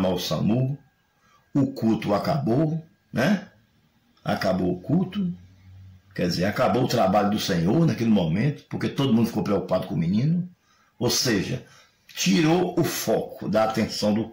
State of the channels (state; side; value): identical; both; correlation 1.00